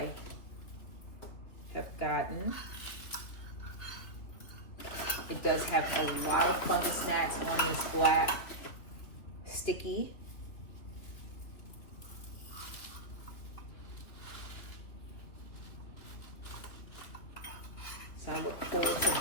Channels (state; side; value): late; right; 3.4 ms